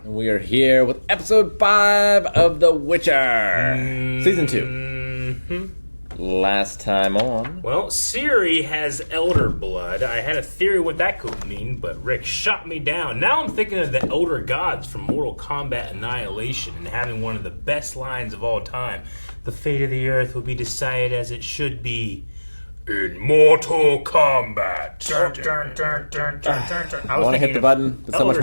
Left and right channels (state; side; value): inverted; both; correlation -1.00